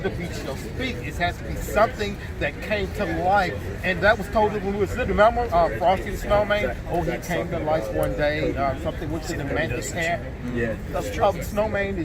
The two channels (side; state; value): both; identical; correlation 1.00